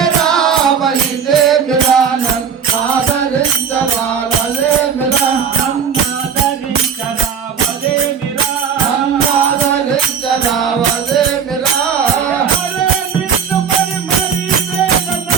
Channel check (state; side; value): quieter; left; 7.1 dB